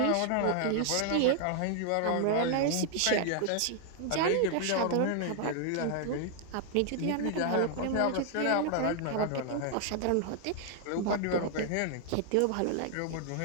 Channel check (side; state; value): both; different; correlation 0.00